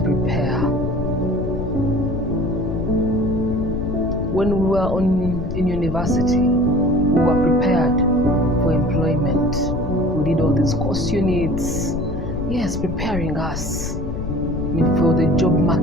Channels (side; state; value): left; noise; rumble, 6 dB below the sound